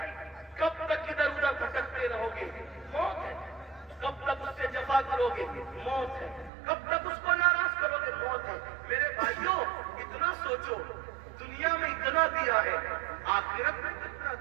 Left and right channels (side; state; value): left; drops out; at 6.5 s